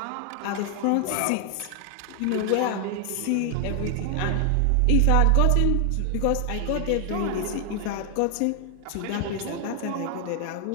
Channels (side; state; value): both; different; correlation 0.00